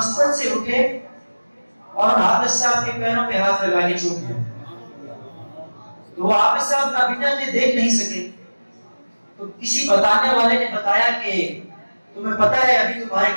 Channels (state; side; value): inverted; both; correlation -1.00